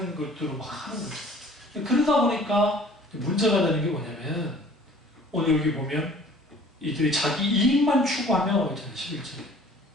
것들을 막 하는 거죠. 그러다 보니까 문제가 되는 게 뭐냐면, 오늘 여기 보면 이들이 자기 이익만 추구하며 있잖아요. 11절에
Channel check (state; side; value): normal; both; correlation 0.51